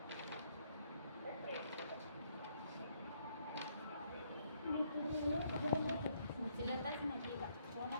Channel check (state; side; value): inverted; both; correlation -0.70